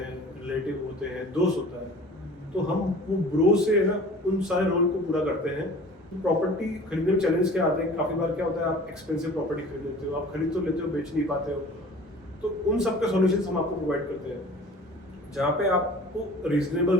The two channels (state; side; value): normal; both; correlation 0.44